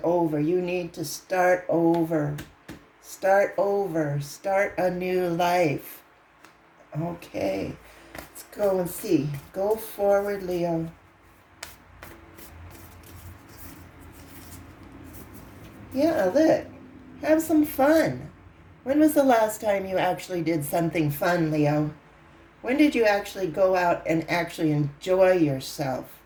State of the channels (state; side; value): identical; both; correlation 1.00